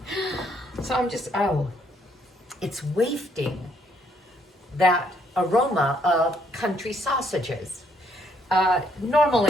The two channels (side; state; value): both; normal; correlation 0.70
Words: So I'm just, it's wafting that aroma of country sausages.